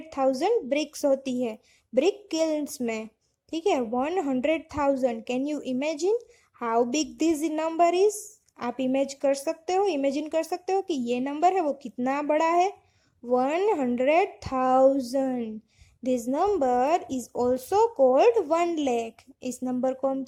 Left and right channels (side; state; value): both; identical; correlation 1.00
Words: bricks होती है ब्रिक किल्न्स में। ठीक है, 100,000। Can you imagine how big this number is? आप इमेजिन कर सकते हो कि ये नंबर है वो कितना बड़ा है? 100,000। This number is also called 1 lakh. इस नंबर को हम